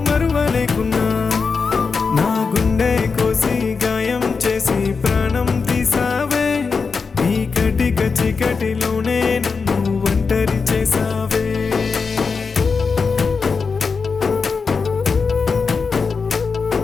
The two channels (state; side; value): quieter; right; 5.0 dB